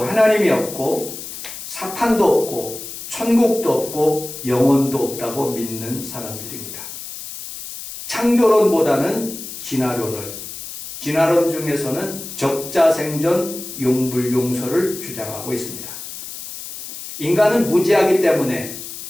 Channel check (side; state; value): left; noise; hiss, 10 dB below the sound